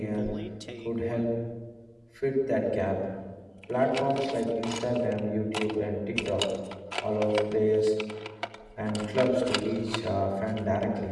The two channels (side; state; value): both; identical; correlation 1.00